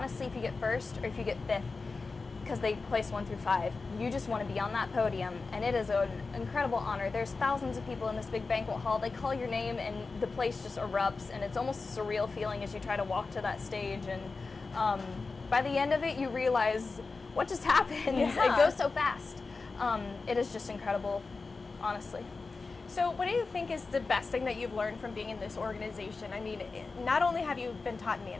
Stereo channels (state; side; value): quieter; right; 4.1 dB